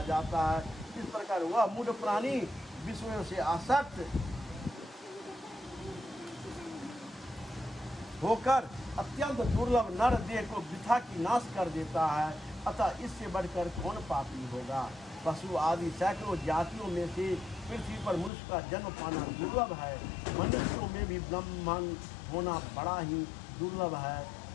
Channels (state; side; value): drops out; right; at 18.3 s